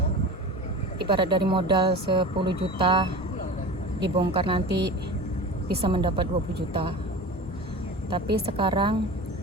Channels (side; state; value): both; normal; correlation 0.33